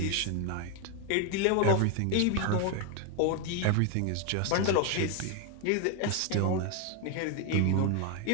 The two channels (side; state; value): both; different; correlation 0.01